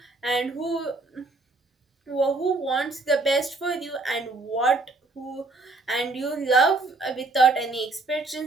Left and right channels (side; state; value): left; quieter; 3.2 dB